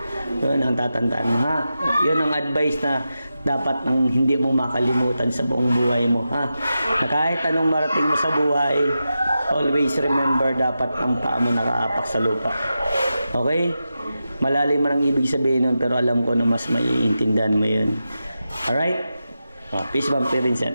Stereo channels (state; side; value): inverted; both; correlation -0.90